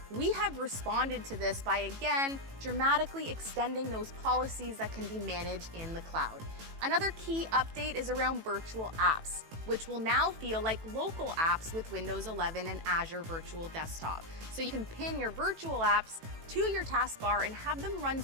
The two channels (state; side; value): late; left; 18 ms